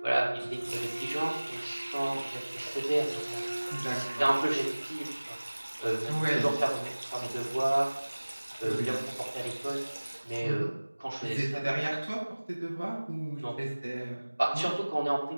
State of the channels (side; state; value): both; inverted; correlation -1.00